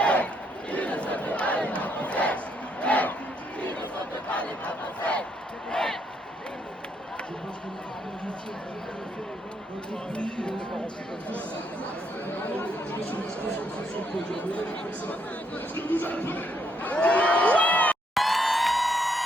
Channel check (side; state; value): both; normal; correlation 0.74